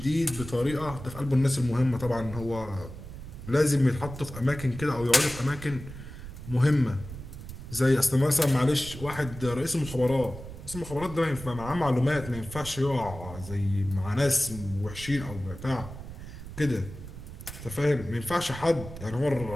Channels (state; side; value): noise; right; rumble, 12 dB below the sound